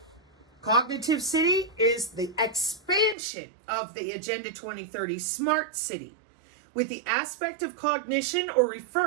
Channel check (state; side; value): drops out; left; at 3.2 s